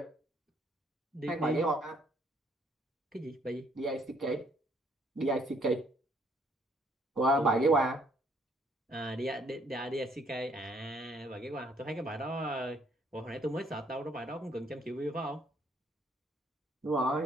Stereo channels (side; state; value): both; normal; correlation 0.66